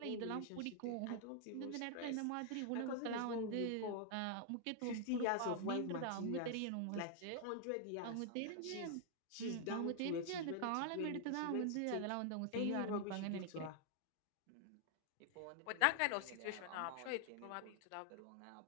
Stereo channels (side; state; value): both; different; correlation 0.00